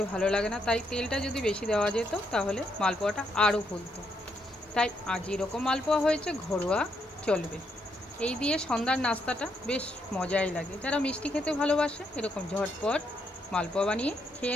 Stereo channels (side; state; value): both; normal; correlation 0.77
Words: ভালো লাগে না। তাই তেলটা যদি বেশি দেওয়া যেত তাহলে মালপোয়াটা আরও ফুলতো। তাই আজ এরকম মালপোয়া হয়েছে, ঘরোয়া চলবে। এই দিয়ে সন্ধ্যার নাস্তাটা বেশ মজাই লাগে। যারা মিষ্টি খেতে ভালোবাসে এরকম ঝটপট মালপোয়া বানিয়ে